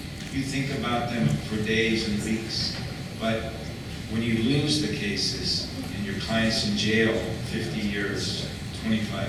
You think about them for days and weeks, but when you lose the cases and your client's in jail 50 years, 25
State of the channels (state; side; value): identical; both; correlation 1.00